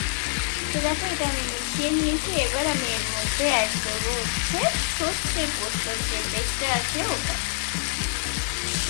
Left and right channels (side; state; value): right; silent; digital silence